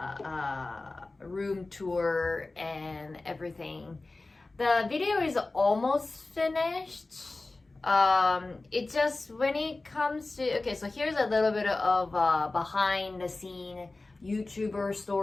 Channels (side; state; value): right; quieter; 3.2 dB